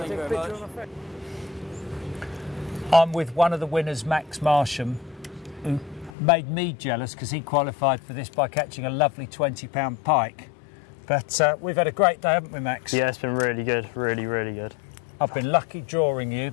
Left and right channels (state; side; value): drops out; right; at 6.2 s